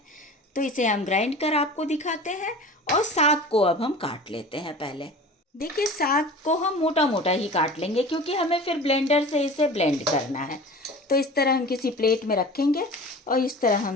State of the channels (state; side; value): normal; both; correlation 0.38